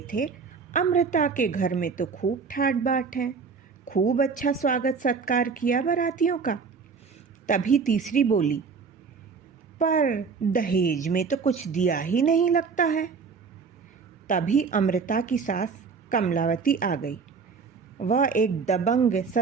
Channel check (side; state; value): left; quieter; 5.3 dB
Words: थे अमृता के घर में तो खूब ठाट बाट है, खूब अच्छा स्वागत सत्कार किया बारातियों का। तभी तीसरी बोली, पर दहेज में तो कुछ दिया ही नहीं लगता है। तभी अमृता की सास कमलावती आ गई। वह एक दबंग,